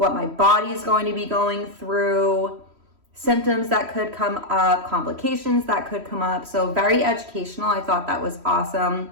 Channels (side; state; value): left; late; 3.1 ms